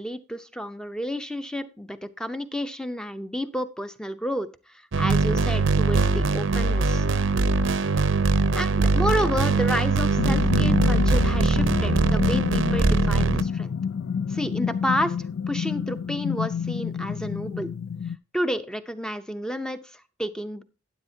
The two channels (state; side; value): normal; both; correlation 0.68